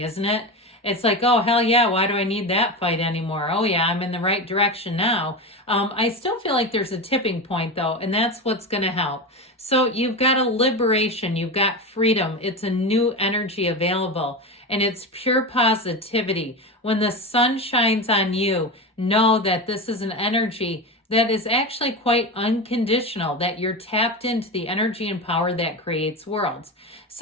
it? It's like, oh, hell yeah, why do I need that fight anymore? Oh, yeah, I'm in the right direction now. I still feel like there's a tipping point, though, and that's what's going to help. So you've got a liberation. You've got freedom. It's a new energy available, and it's pure positivity. When the sun shines on you, know that this is an energy that is actually quite unconditional, that you're tapped into the energy and power that creates worlds.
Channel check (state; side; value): normal; both; correlation 0.21